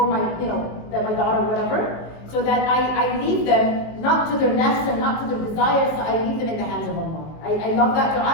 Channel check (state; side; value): late; right; 19 ms